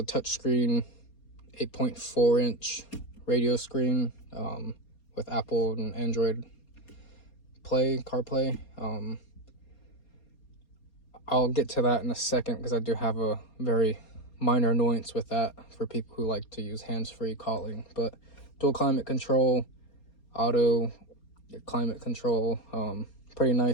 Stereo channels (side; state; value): right; late; 4.3 ms